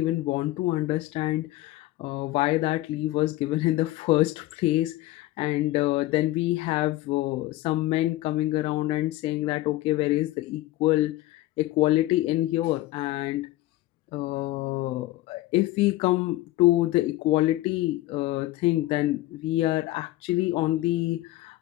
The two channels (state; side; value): quieter; right; 17.0 dB